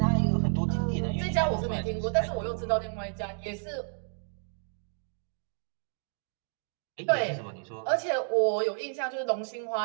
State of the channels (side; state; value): left; silent; digital silence